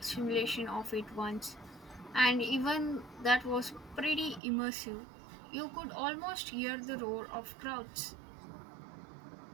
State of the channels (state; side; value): drops out; left; at 4.4 s